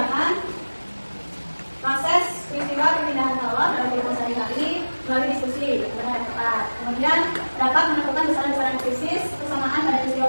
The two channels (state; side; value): inverted; both; correlation -1.00